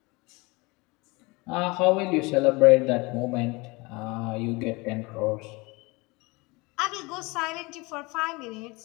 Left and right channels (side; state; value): right; quieter; 25.3 dB